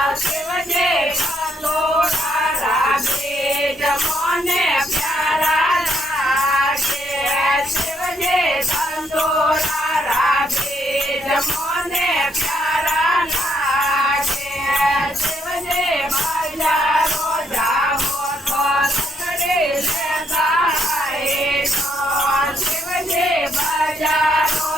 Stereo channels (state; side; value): normal; both; correlation 0.73